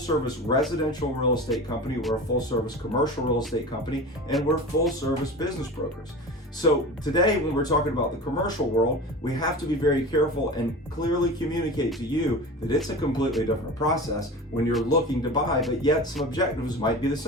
residential real estate company, we're a full service commercial real estate company, and we're full service business brokers. So today when we're talking about the commercial world, we have to be very careful and clearly communicate to you that it's a completely different process when you're looking to buy, but yet some objectives might be the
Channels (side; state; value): both; normal; correlation 0.33